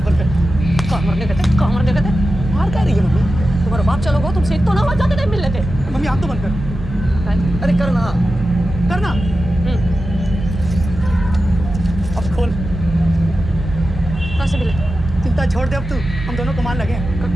बंद कर। कहाँ मरने गए थे? मार क्या रही है मम्मी? तुम्हारा बाप चलो गो, तुमसे तो ना हो जाते नहीं मिलने थे। मम्मी हाथ तो बंद कर। अरे करना। करना। अब खोल। कहाँ से मिले? चिंता छोड़ दे अब तू, हम दोनों कमाल लगे हैं।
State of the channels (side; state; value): both; normal; correlation 0.92